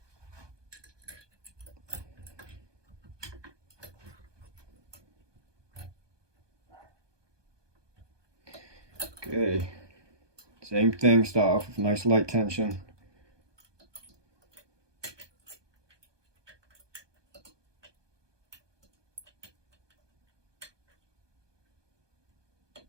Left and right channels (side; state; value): left; late; 1.2 ms